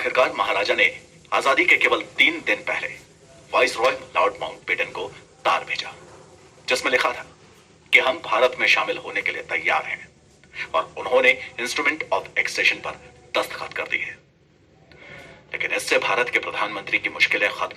महाराजा ने आजादी के केवल 3 दिन पहले वाइसरॉय लॉर्ड माउंटबेटन को तार भेजा, जिसमें लिखा था कि हम भारत में शामिल होने के लिए तैयार हैं, और उन्होंने इंस्ट्रूमेंट ऑफ एक्सेशन पर दस्तखत कर दिए। लेकिन इससे भारत के प्रधानमंत्री की मुश्किलें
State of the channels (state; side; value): identical; both; correlation 1.00